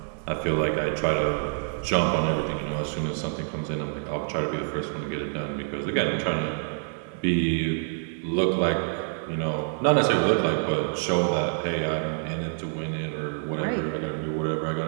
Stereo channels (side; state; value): left; silent; 57 dB below the other